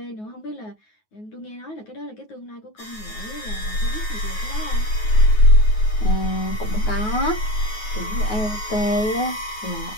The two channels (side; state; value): right; late; 9.4 ms